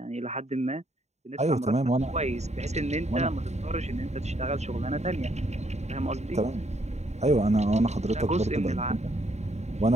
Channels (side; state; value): left; late; 0.32 ms